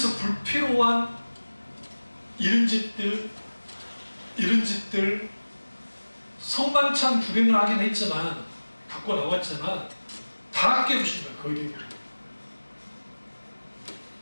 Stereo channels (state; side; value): inverted; both; correlation -1.00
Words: 불필요한 이런 짓들 성만찬 구경을 하긴 했지만, 갖고 나왔지만 다 깨부신 거예요. 거의